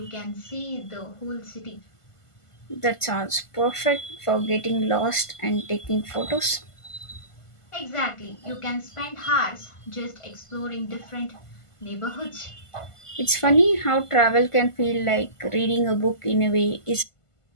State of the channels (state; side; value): late; right; 1.5 ms